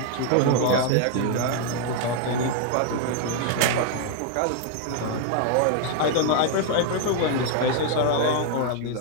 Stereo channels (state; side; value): different; both; correlation 0.00